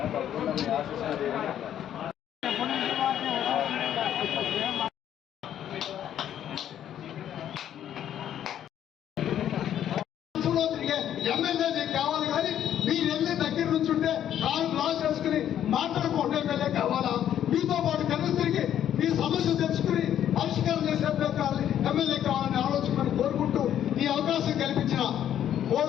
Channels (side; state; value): right; quieter; 10.5 dB